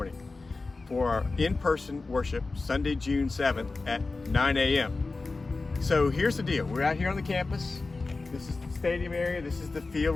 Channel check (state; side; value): quieter; right; 3.7 dB